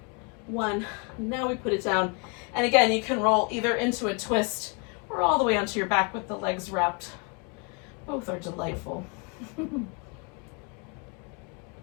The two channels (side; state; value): right; quieter; 32.9 dB